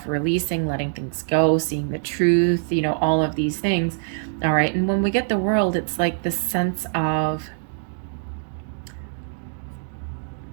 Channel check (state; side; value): silent; left; digital silence